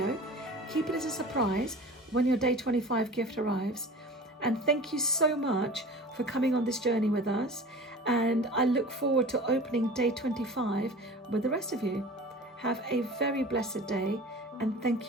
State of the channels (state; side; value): normal; both; correlation 0.38